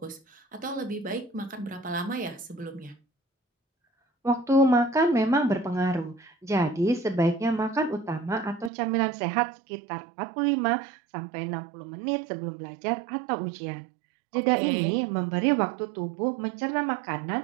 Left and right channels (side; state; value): left; drops out; at 8.7 s